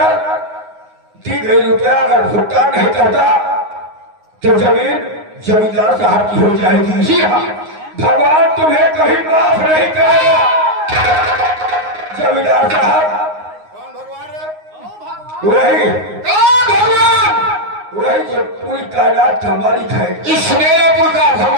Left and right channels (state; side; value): late; left; 9.6 ms